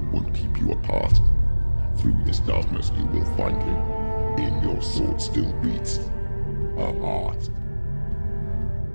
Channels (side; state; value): both; inverted; correlation -1.00